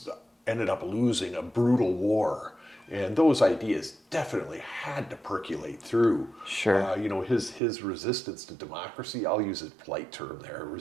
ended up losing a brutal war. And those ideas definitely had to percolate through. Sure. His resistance to democracy, I'll use a polite term there,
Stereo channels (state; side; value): drops out; left; at 7.6 s